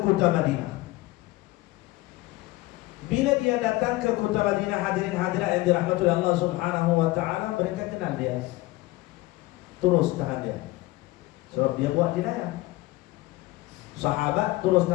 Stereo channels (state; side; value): quieter; right; 19.3 dB